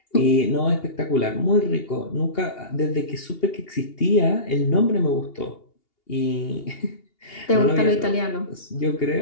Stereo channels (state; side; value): late; right; 2.8 ms